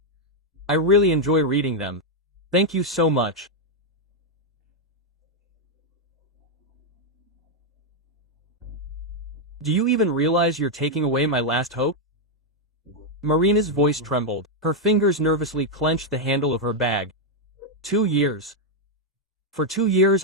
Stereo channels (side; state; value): both; normal; correlation 0.00